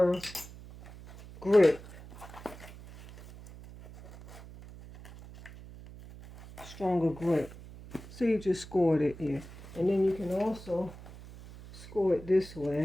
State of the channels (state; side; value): noise; right; hum, 17 dB below the sound